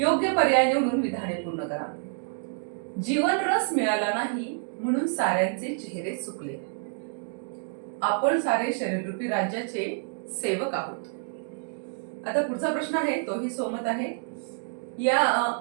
पर्याय निवडून विधाने पूर्ण करा. जीवन रस मिळाला नाही म्हणून साऱ्यांचे चेहरे सुकले. आपण सारे शरीररूपी राज्याचे सेवक आहोत. आता पुढचा प्रश्न आहे तोही सोमत आहे. या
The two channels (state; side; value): silent; left; digital silence